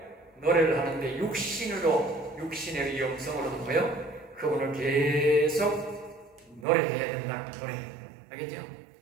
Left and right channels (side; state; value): left; drops out; at 6.7 s